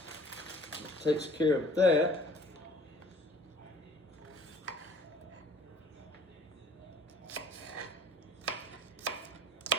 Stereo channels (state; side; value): normal; both; correlation 0.51